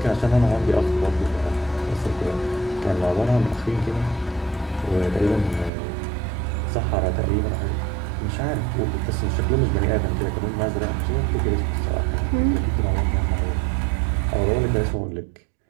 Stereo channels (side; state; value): left; drops out; at 5.7 s